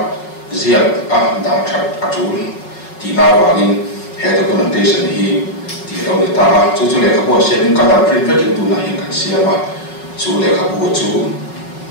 ziat dah cat acul di nawangin head documentation hi di lawan itu cucu lekap buat sharing kalau print itu nahin kan siapa cucu lekap buat cucu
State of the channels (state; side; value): late; right; 5.4 ms